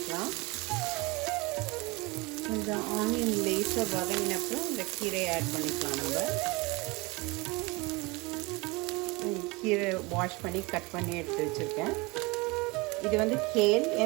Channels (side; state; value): left; quieter; 25.2 dB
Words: இந்த ஆனியன் லேஸாக வதங்கினப்போ இந்த கீரையை ஆட் பண்ணிக்கலாம். நம்ம கீரை வாஷ் பண்ணி கட் பண்ணி எடுத்து வச்சுருக்கேன். இது வந்து கேல்,